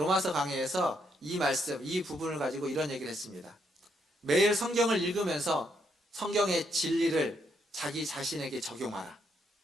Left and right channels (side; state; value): both; normal; correlation 0.75